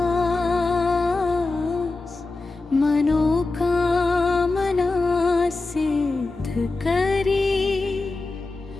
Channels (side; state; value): right; quieter; 3.4 dB